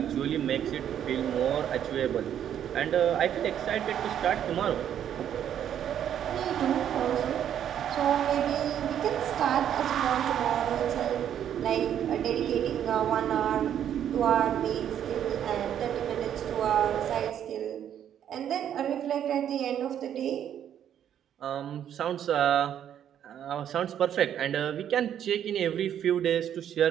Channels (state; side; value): quieter; left; 9.8 dB